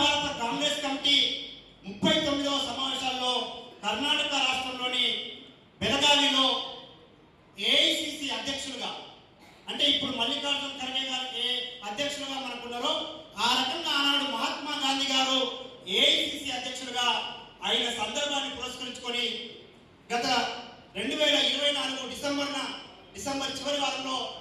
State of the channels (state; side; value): identical; both; correlation 1.00